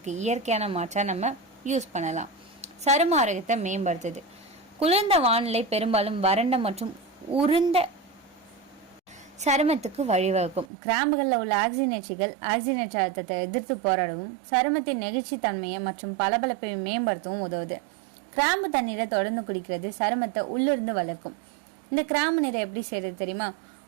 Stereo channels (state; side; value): drops out; left; at 10.7 s